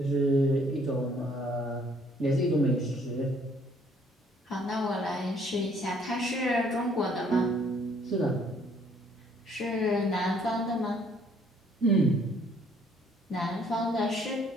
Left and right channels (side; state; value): both; normal; correlation 0.63